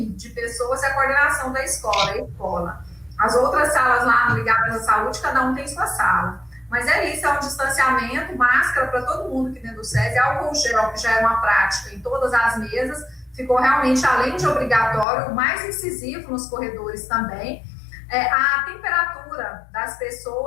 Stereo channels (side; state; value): right; drops out; at 15.1 s